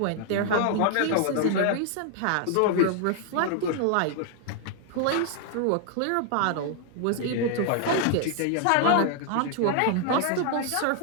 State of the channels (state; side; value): different; both; correlation 0.00